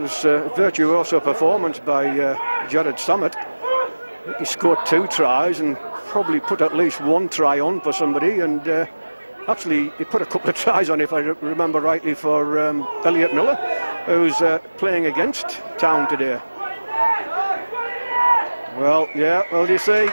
a virtuoso performance by Jared Summit. He scored 2 tries and probably put at least 1 try on for somebody, and actually he put a couple of tries on, if I remember rightly, for Elliot Miller, who's playing against Town today. Well, yeah, well, you see,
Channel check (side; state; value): both; inverted; correlation -1.00